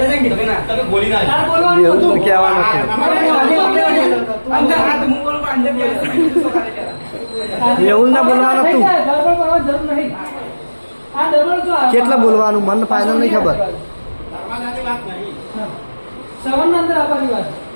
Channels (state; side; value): inverted; both; correlation -1.00